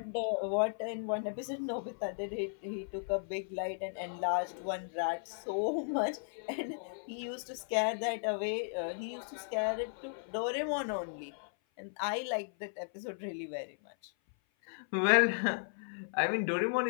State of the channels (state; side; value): silent; right; 54 dB below the other